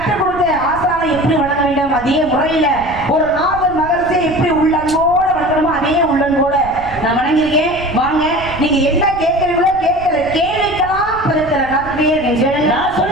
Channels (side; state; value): right; noise; rumble, 16 dB below the sound